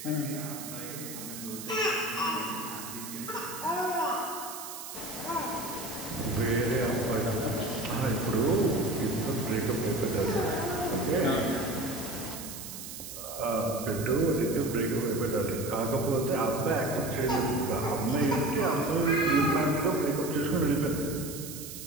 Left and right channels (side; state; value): right; noise; hiss, 10 dB below the sound